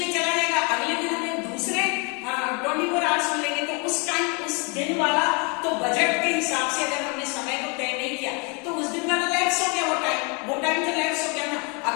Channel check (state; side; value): quieter; right; 32.5 dB